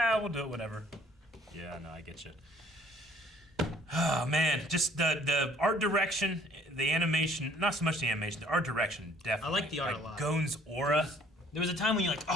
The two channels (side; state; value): both; normal; correlation 0.58